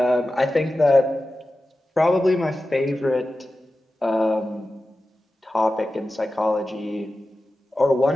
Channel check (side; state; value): both; normal; correlation 0.94